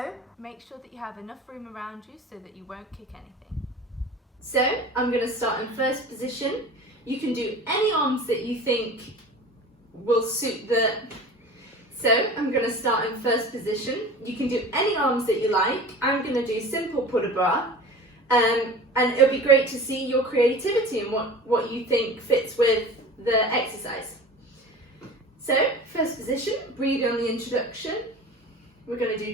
make sure that you have enough room around you so that you won't kick anything. So I'm going to start in first position. You can do any arms that you think will suit the... So I'm going to start in first position. You can do any arms that you like. I'm going to do simple put a bra. And it'll be great to see your creativity and what you think fits with the exercise. So first position, breathe on the introduction. We're going to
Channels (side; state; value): both; normal; correlation 0.38